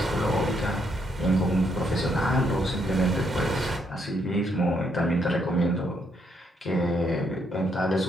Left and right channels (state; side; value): normal; both; correlation 0.74